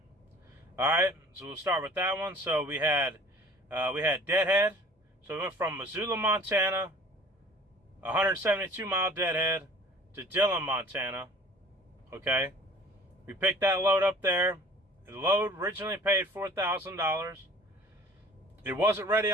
Alright, so we'll start with that one. So we had deadhead. So we went from Missoula, Montana, 172 mile deadhead, to Dillon, Montana. Okay, we picked that load up there. The load originally paid $4,000. It wasn't ready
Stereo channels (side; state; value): both; normal; correlation 0.47